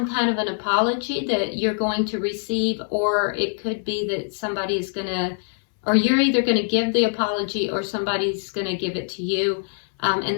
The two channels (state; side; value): silent; right; 63 dB below the other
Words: kind of an apology that you're going to receive, or it could be that somebody is going to, or you're either going to give the apology or somebody's going to give it to you.